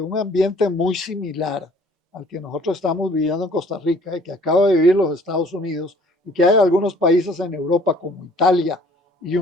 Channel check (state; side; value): normal; both; correlation 0.55